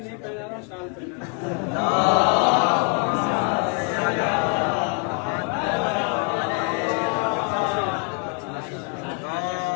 पहना रहा, शाल पहना।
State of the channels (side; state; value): right; quieter; 35.4 dB